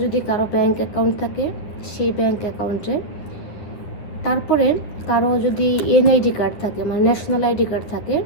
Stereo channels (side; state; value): right; late; 10 ms